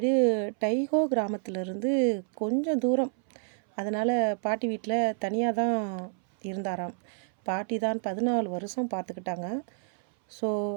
டைஹோ கிராமத்திலேருந்து கொஞ்சம் தூரம். அதனால் பாட்டி வீட்டில் தனியாக தான் இருந்தாராம். பாட்டி தான் 14 வருஷம் பார்த்துக்கிட்டாங்க. ஸோ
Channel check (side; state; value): left; silent; 59 dB below the other